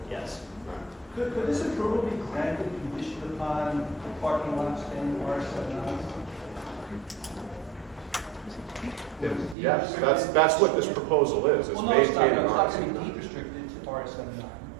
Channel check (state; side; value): drops out; left; at 9.6 s